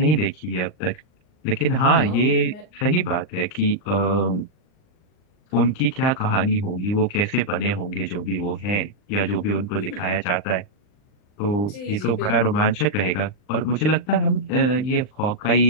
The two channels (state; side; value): late; right; 39 ms